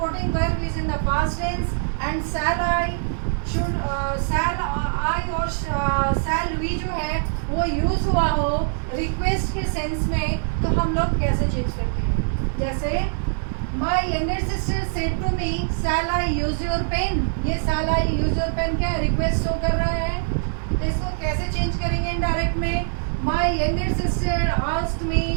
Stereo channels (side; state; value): left; silent; 63 dB below the other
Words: verb is in the past tense and shall I should, shall I और शैल वी जो है वो यूज हुआ हो रिक्वेस्ट के सेंस में, तो हम लोग कैसे चेंज करते हैं। जैसे my younger sister said to me shall I use your pen, ये shall I use your pen क्या है? रिक्वेस्ट शो कर रहा है। तो इसको कैसे चेंज करेंगे इनडायरेक्ट में? My younger sister asked me